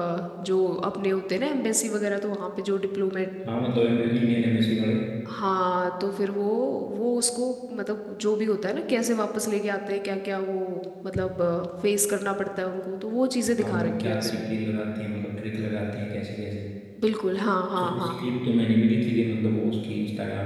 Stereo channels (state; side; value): identical; both; correlation 1.00